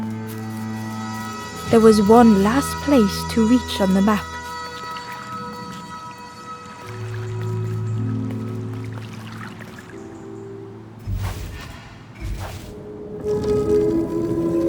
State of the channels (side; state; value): both; identical; correlation 1.00